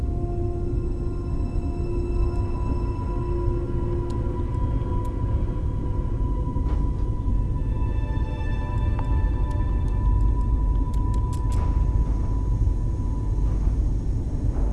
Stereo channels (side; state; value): both; identical; correlation 1.00